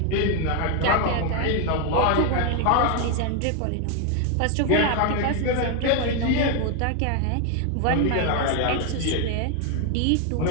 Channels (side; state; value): both; different; correlation 0.01